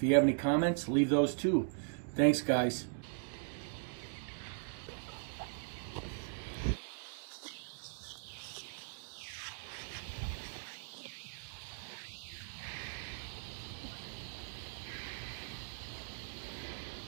you have any comments, leave those too. Thanks, guys.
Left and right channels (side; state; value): left; silent; digital silence